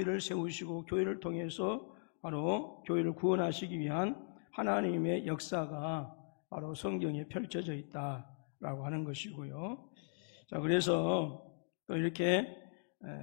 세우시고 교회를 통해서 바로 교회를 구원하시기 위한 하나님의 역사가 바로 성경에 펼쳐져 있다라고 하는 것이고요. 자, 그래서 또 이렇게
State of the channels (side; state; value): right; silent; digital silence